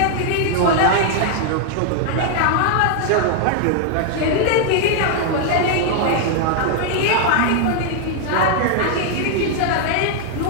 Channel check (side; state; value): both; different; correlation 0.00